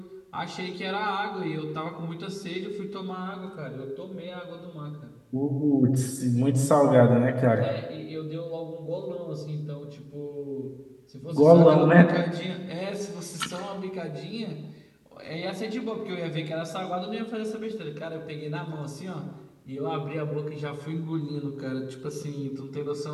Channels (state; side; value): identical; both; correlation 1.00